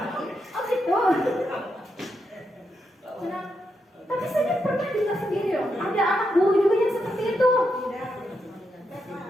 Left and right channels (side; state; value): both; normal; correlation 0.83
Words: gitu. Nah, tapi saya pernah dengar sendiri loh. Ada anak guru juga yang seperti itu.